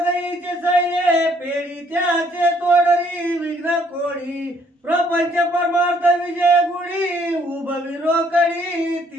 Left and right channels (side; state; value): both; normal; correlation 0.65